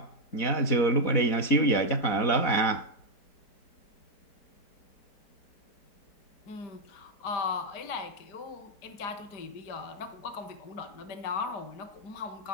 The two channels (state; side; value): late; right; 4.1 ms